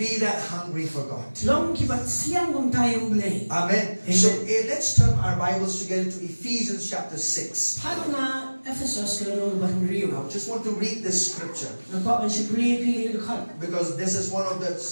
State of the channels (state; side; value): inverted; both; correlation -1.00